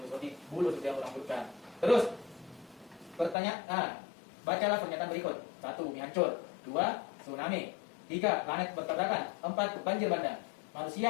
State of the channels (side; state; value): right; drops out; at 3.4 s